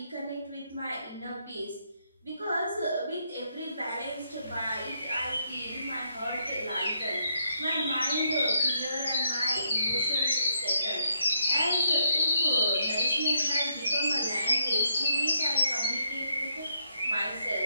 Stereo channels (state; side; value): inverted; both; correlation -0.74